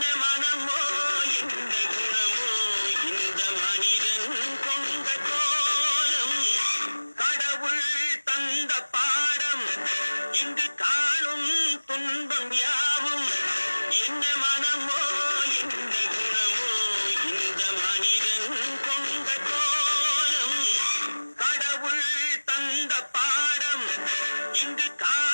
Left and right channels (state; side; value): inverted; both; correlation -1.00